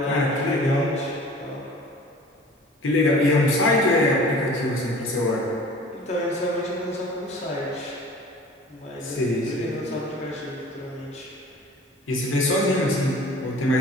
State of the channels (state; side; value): normal; both; correlation 0.45